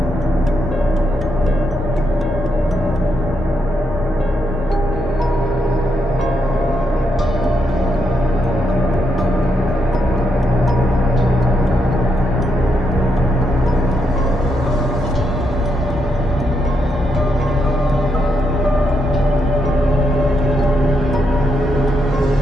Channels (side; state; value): both; normal; correlation 0.80